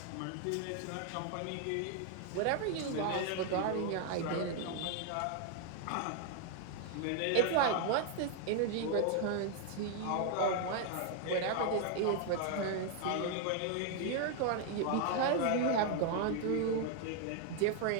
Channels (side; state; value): both; different; correlation 0.00